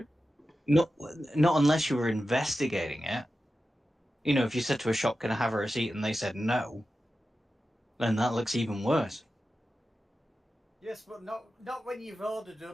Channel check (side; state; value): both; normal; correlation 0.92